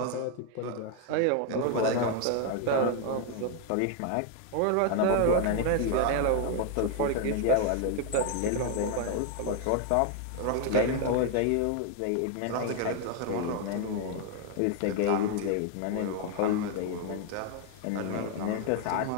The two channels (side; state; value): both; different; correlation 0.00